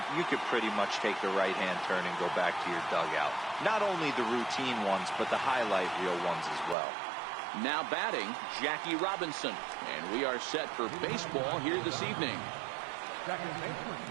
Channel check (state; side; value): drops out; left; at 6.8 s